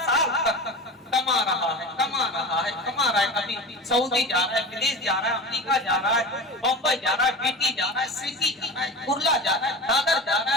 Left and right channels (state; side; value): normal; both; correlation 0.30